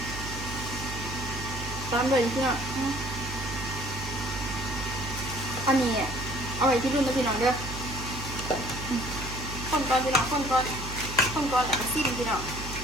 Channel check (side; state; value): right; noise; hum, 9 dB below the sound